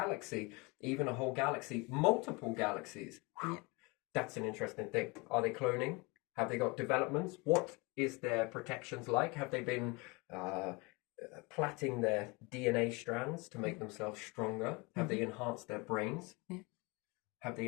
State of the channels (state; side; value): quieter; right; 27.1 dB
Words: even a whole galaxy, multiple galaxies. That's an interesting thing. Are they cloning? Have they got developments? What is their protections like? Have they been plaiting their DNA strands to make themselves stronger? Have they enhanced their brains? Have they